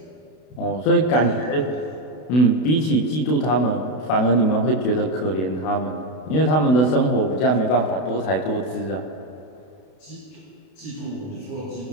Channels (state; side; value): late; right; 32 ms